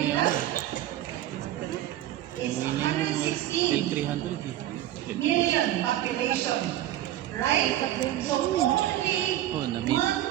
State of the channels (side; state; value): left; quieter; 13.3 dB